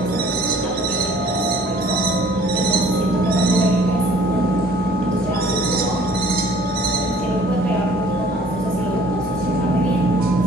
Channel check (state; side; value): normal; both; correlation 0.54